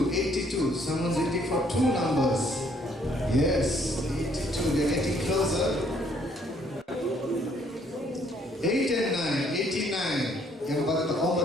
82. Someone's waiting for two numbers. Yes, 82, they're getting closer. 8 and 9, 89.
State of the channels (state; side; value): normal; both; correlation 0.65